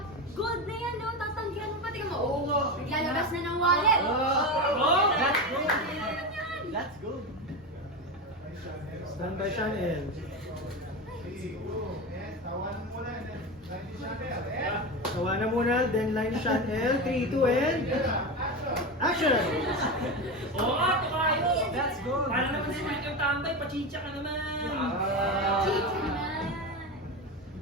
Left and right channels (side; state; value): both; normal; correlation 0.20